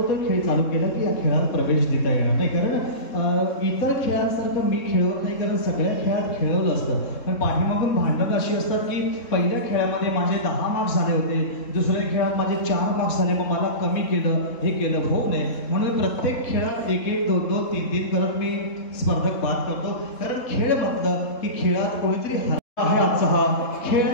खेळ चालू केला की या खेळात प्रवेश देता येणार नाही. कारण इतर खेळांसारखं मी खेळत नाही, कारण सगळ्या खेळात खेळवलं असतं. पण पाठीमागून भांडणं अशी असतात की पहिल्या खेळामध्ये माझे 10 मार्क्स झाले होते, दुसऱ्या खेळात माझे 4 मार्क्स झाले, मग मला कमी केलं, हे केलं, होऊ नये म्हणून प्रत्येक खेळात 1-1, 2-2, 3-3 करत मी स्पर्धक बाद करतो. कारण खेळ म्हटलं की खेळात कोणीतरी हरला आहे. आजचा हा खेळ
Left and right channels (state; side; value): late; right; 3.7 ms